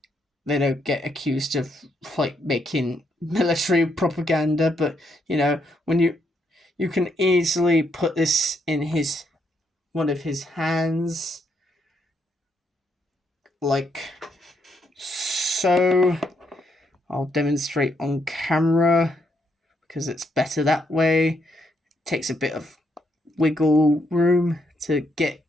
don't get accused of like making military propaganda. But you know, when you can easily put this in one of his hands, like so. I'll demonstrate on camera because it's better that way. It takes a bit of wiggle room to get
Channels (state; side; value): normal; both; correlation 0.76